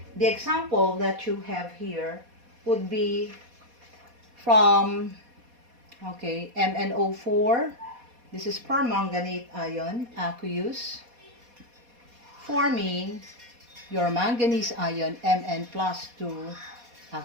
the example that you have here would be from, okay, MnO4. This is permanganate ion, aqueous, forming your manganese ion, Mn plus 2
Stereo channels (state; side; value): late; left; 4.2 ms